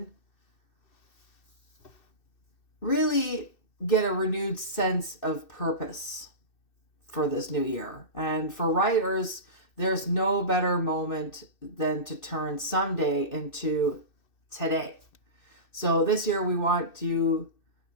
really get a renewed sense of purpose for this new year. And for writers, there's no better moment than to turn someday into today. So this year we want you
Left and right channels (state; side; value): late; right; 2.6 ms